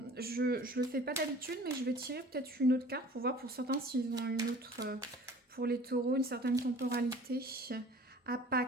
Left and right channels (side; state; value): both; normal; correlation 0.47